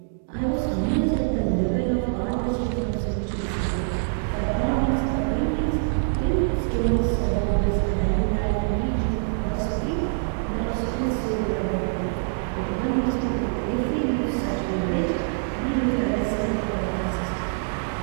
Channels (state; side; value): silent; left; digital silence